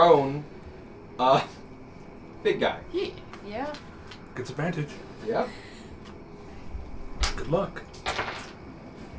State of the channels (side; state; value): both; identical; correlation 1.00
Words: big guy. Yeah. Gets advantage. Yep. Good luck.